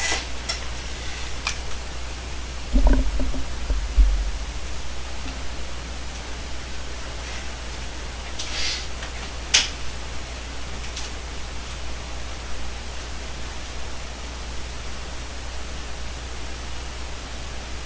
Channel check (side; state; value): both; identical; correlation 1.00